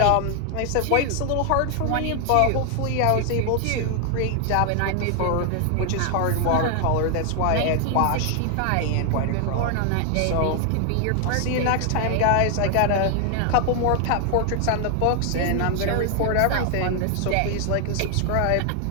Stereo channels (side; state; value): both; different; correlation 0.00